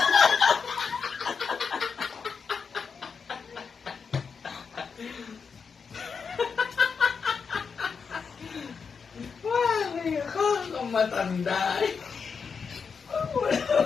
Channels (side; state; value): right; quieter; 5.8 dB